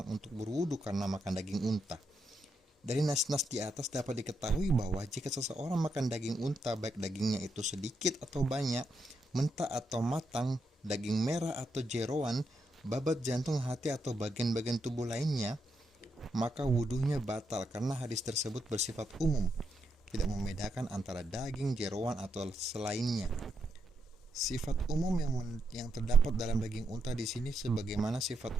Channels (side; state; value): both; normal; correlation 0.81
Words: untuk berwudu karena makan daging unta. Dari nas-nas di atas dapat diketahui bahwa jika seseorang makan daging unta, baik dagingnya itu sedikit atau banyak, mentah atau matang, daging merah atau jeroan, babat, jantung, hati, atau bagian-bagian tubuh lainnya, maka wudunya batal karena hadis tersebut bersifat umum, tidak membedakan antara daging, jeroan, atau selainnya. Sifat umum yang terdapat dalam daging unta di sini sebagaimana sifat